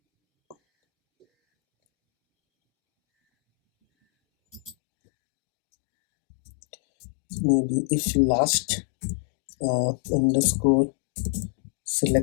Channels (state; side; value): drops out; right; at 4.8 s